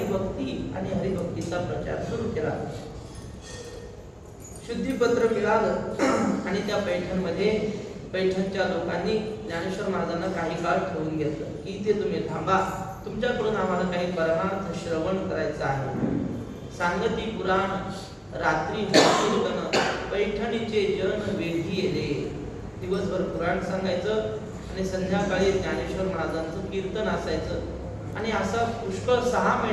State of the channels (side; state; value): both; identical; correlation 1.00